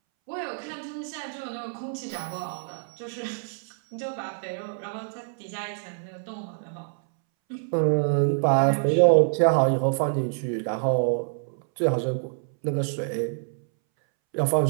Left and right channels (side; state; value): left; silent; 61 dB below the other